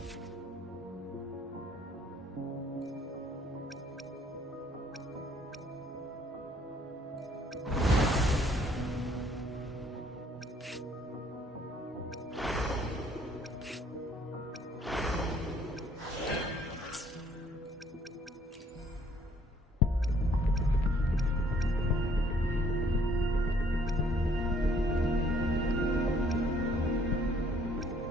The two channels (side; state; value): both; normal; correlation 0.62